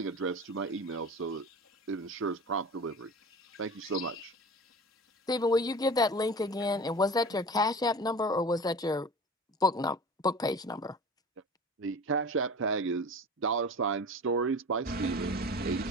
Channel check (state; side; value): normal; both; correlation 0.36